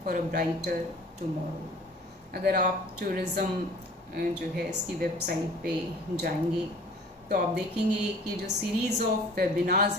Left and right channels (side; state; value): both; normal; correlation 0.48